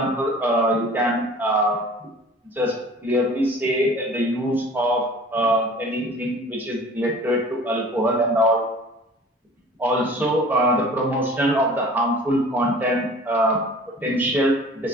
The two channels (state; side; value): normal; both; correlation 0.45